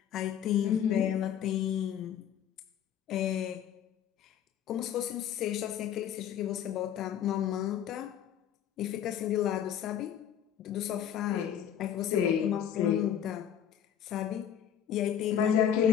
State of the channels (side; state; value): right; quieter; 9.6 dB